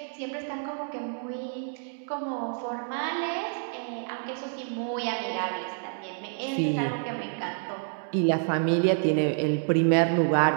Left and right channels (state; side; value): silent; left; 57 dB below the other